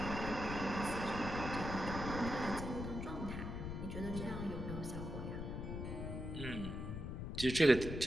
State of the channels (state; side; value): noise; left; rumble, 5 dB below the sound